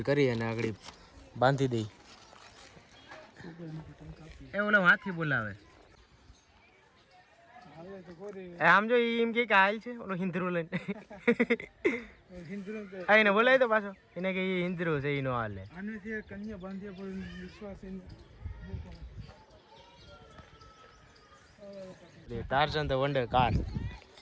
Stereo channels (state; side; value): identical; both; correlation 1.00